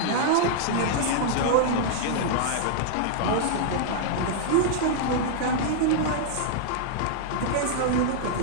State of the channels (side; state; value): both; different; correlation -0.01